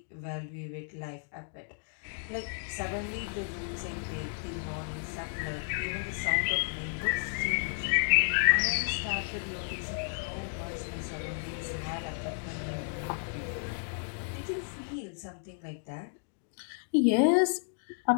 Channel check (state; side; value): silent; right; digital silence